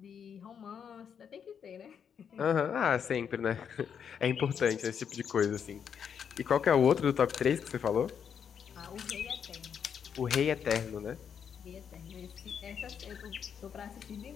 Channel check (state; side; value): quieter; right; 7.6 dB